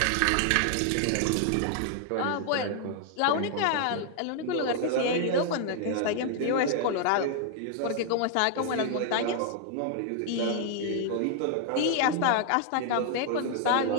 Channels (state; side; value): different; both; correlation 0.00